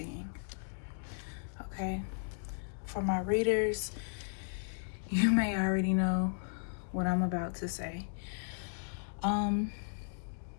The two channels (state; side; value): silent; right; digital silence